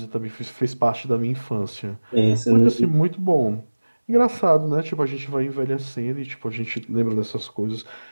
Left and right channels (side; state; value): both; inverted; correlation -1.00